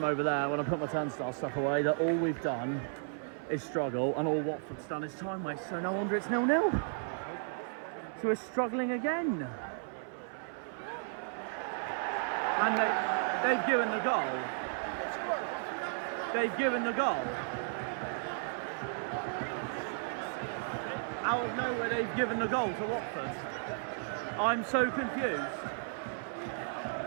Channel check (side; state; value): left; silent; 55 dB below the other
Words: over there when I put my turnstile stuff away that all we've done is struggle, and all Watford's done is time waste, so no wonder it's 0-0. So we're struggling again. And they've given the goal. They've given the goal. Out of nowhere, they've given the goal to Watford. I'm so confused.